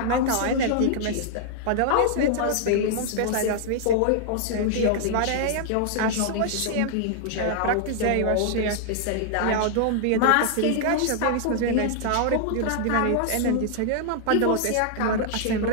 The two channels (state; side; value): different; both; correlation -0.01